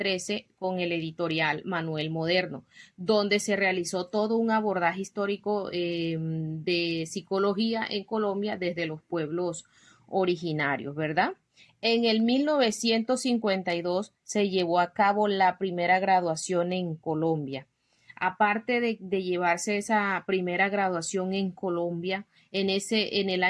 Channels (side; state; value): both; identical; correlation 1.00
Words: con el editorial Manuel Moderno, donde se realizó todo un abordaje histórico de psicología en Colombia desde los pueblos originarios, ¿verdad? En el 1952 se llevó a cabo la primera graduación en Colombia. Aparte de llevarse esa primera graduación en Colombia, en el